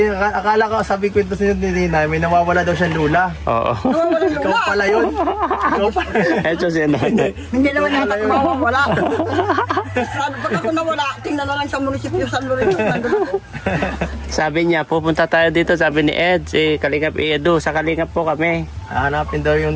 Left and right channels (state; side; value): identical; both; correlation 1.00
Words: akala ko sabi ko ito sa inyo ni Tinay, may nawawala daw siyang lula. Oo. Nawawalan Ikaw lula. pala yun. Ikaw pala. Ito si nanay. Hindi naman yata ko mawawala. Pag ako nawala, tingnan na lang sa munisipyo San Lorenzo. Nandun ako. Sabi niya, pupunta tayo dito, sabi ni Ed, si Kalingap Edu, sa Kalingap po kami. Hanapin daw